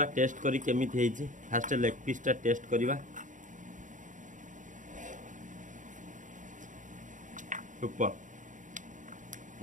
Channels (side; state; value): left; late; 0.37 ms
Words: ଟେଷ୍ଟ କରି କେମିତି ହେଇଛି। ଫାଷ୍ଟ ଲେଗ୍ ପିସ୍ଟା ଟେଷ୍ଟ କରିବା। ସୁପର